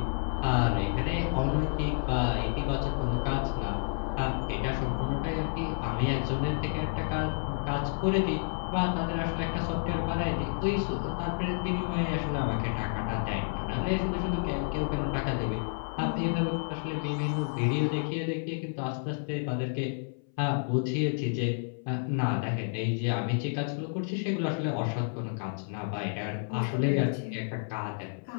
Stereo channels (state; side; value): silent; right; 58 dB below the other